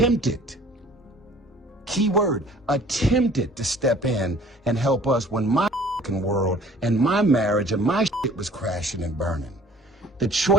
key word, attempted to step in and help us when my world and my marriage and my shit was crashing and burning. The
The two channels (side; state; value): both; normal; correlation 0.51